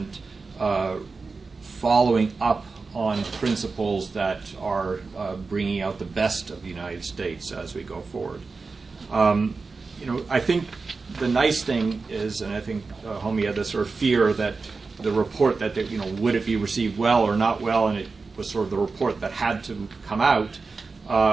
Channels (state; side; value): quieter; left; 4.3 dB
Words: following up on principles that are bringing out the best of the United States as we go forward? I think the nice thing is, and I think Homie had this sort of fear that the report that, would it be received well or not well, and it was sort of the report that had to come out.